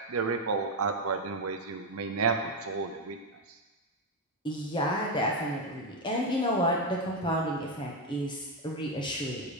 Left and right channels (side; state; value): both; normal; correlation 0.07